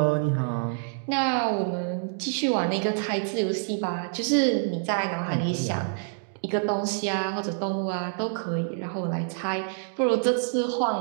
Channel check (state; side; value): silent; left; digital silence